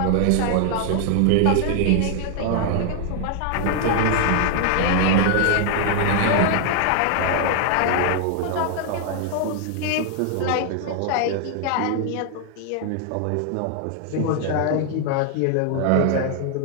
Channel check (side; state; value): both; different; correlation 0.00